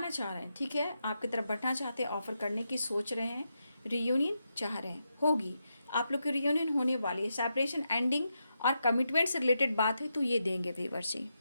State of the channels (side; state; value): both; inverted; correlation -0.85